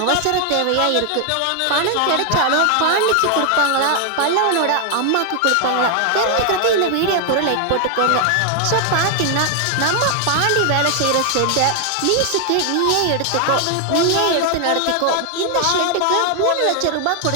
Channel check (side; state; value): both; different; correlation 0.00